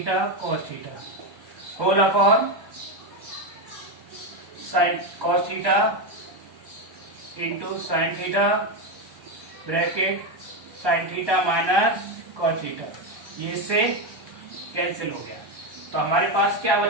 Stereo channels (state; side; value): late; left; 1.2 ms